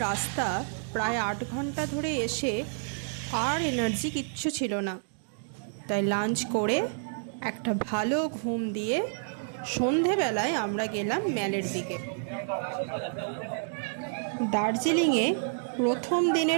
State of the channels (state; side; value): silent; left; digital silence